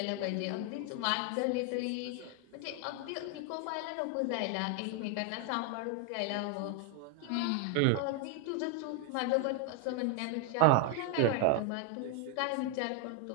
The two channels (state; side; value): different; both; correlation 0.01